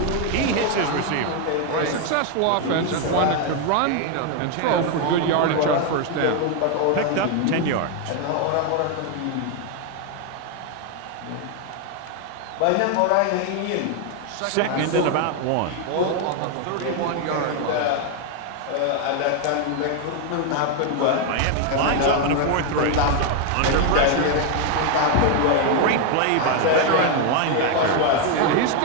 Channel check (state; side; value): different; both; correlation 0.01